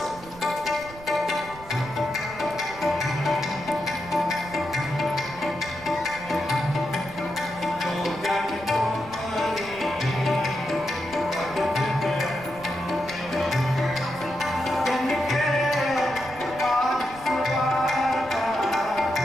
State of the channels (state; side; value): noise; right; rumble, 18 dB below the sound